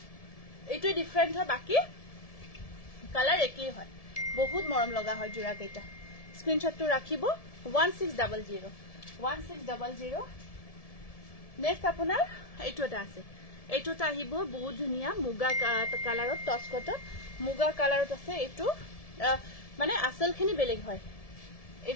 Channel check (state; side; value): late; right; 1.7 ms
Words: এইটোই ডিফাৰেন্ট হয় বাকি কালাৰ একেই হয় বহুত মৰম লগা হয় জোৰা কেইটা স্ক্ৰিনশ্বটটো ৰাখিব 1600 নেক্সট আপোনাৰ এইটোটা আছে এইটোটা আহিব বহুত ধুনিয়া মুগা কালাৰত টচ কটন মুগা কালাৰত আছে এইটো মানে আসলখিনি বেলেগ হয়